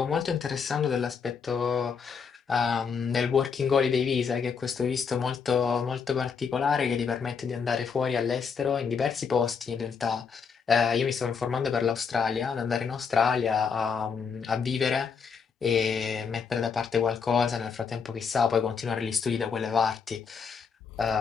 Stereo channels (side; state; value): right; quieter; 6.0 dB